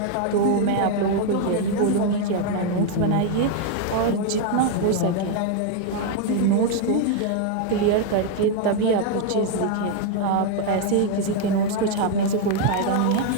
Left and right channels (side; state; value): both; different; correlation 0.00